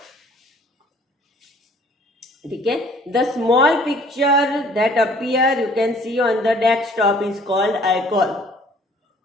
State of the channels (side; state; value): both; normal; correlation 0.55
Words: ठीक है. The small picture that appear you can see on the desktop is called icon.